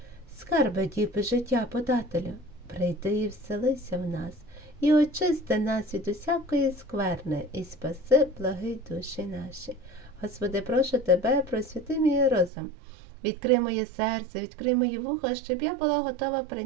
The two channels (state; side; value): drops out; left; at 12.5 s